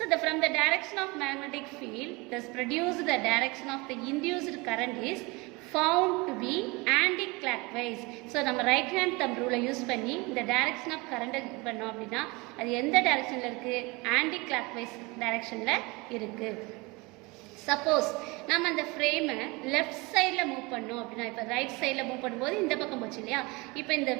from the direction of magnetic field thus produced the direction of the induced current is found to be anti-clockwise. So நம்ம right hand thumb rule use பண்ணி இந்த direction of current பண்ணோம் அப்படின்னா அது எந்த directionல இருக்கு, anti-clockwise directionல இருக்கு. சப்போஸ் நம்ம அந்த ஃப்ரேமை லெஃப்ட் சைடில் மூவ் பண்ணோம் அப்படின்னா, இப்போ ரைட் சைடில் மூவ் பண்ணும்போது இந்த பக்கம் போச்சு இல்லையா, இப்போ இந்த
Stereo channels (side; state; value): left; quieter; 25.5 dB